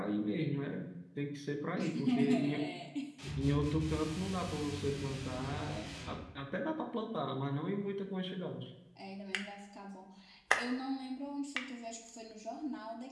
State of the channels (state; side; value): identical; both; correlation 1.00